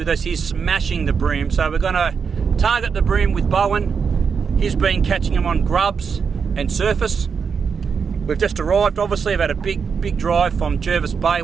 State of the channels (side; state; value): left; quieter; 6.1 dB